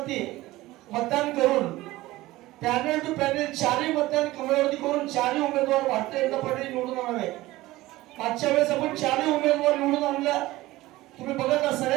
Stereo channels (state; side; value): quieter; left; 18.0 dB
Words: मतदान करून पॅनल टू पॅनल 4ही मतदान कमळावरती करून 4ही उमेदवार भारतीय जनता पार्टी निवडून आणावे. मागच्या वेळेस आपण 4ही उमेदवार निवडून आणला, तुम्ही बघत